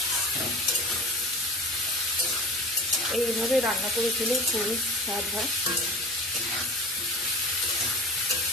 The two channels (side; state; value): both; normal; correlation 0.36